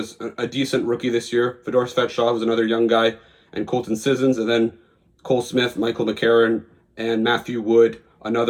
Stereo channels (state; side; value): identical; both; correlation 1.00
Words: a decent rookie this year, Fedor Svechnikov, who was another young guy, and Colton Sissons, and then Cole Smith, Michael McCarron, and Matthew Wood,